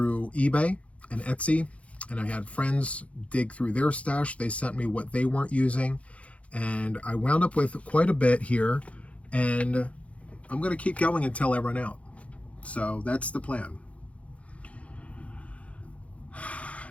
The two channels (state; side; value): late; right; 0.064 ms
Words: eBay and Etsy, and I had friends dig through their stash. They sent me what they weren't using, and I wound up with quite a bit here, and I'm going to keep going until I run out. So that's the plan.